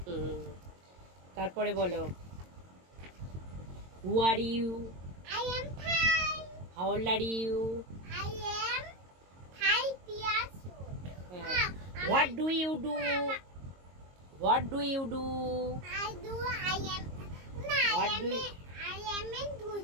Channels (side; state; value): left; late; 22 ms